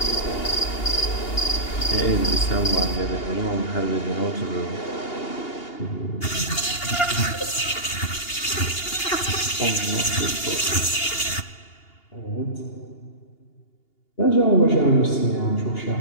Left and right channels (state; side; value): late; right; 2.8 ms